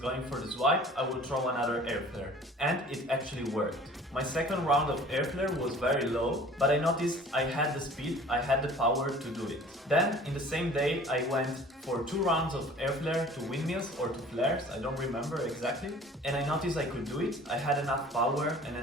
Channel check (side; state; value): both; normal; correlation 0.48